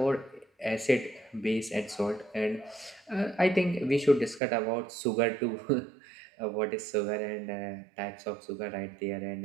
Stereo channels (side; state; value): left; drops out; at 4.4 s